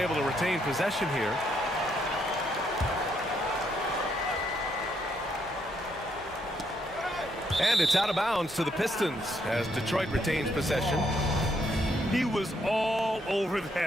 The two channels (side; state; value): both; normal; correlation 0.74